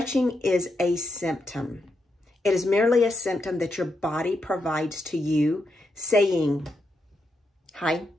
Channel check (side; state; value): both; normal; correlation 0.83